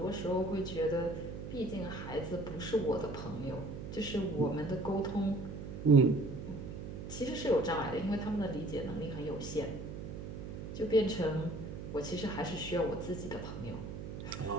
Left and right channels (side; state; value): right; noise; hum, 8 dB below the sound